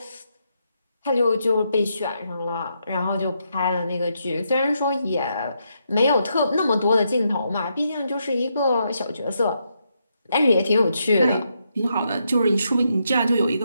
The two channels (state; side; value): inverted; both; correlation -0.80